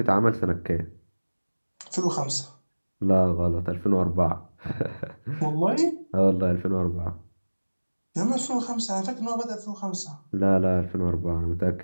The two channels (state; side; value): inverted; both; correlation -1.00